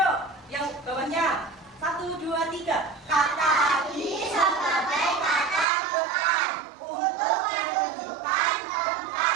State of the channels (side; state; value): left; drops out; at 5.7 s